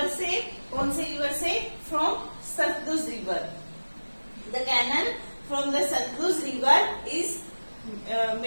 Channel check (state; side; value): inverted; both; correlation -1.00